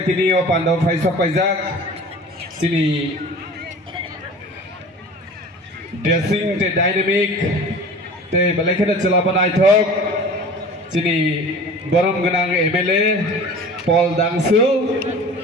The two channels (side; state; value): both; normal; correlation 0.40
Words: o Pando Faisok Pajak, Sini dressing the dynamic, the Balakana Chalapanai talk, Sini Borom Ganang MLA, Paul Dangsu,